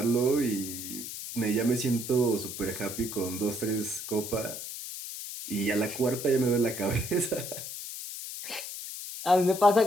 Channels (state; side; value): noise; left; hiss, 8 dB below the sound